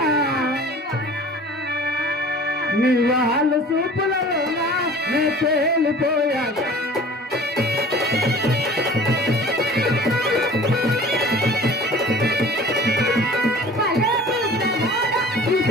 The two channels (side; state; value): both; normal; correlation 0.45